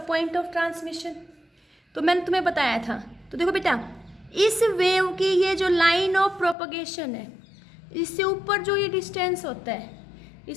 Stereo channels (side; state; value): right; drops out; at 6.6 s